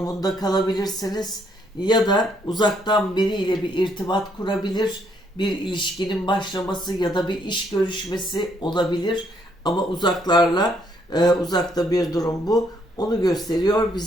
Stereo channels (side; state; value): both; normal; correlation 0.70